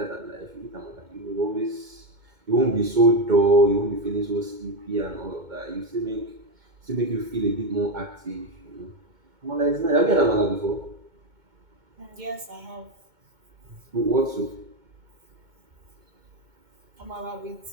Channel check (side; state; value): left; late; 2.2 ms